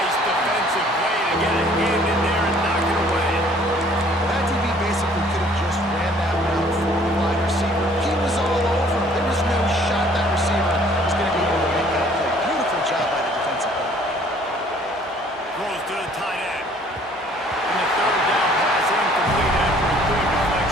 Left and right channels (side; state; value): both; normal; correlation 0.57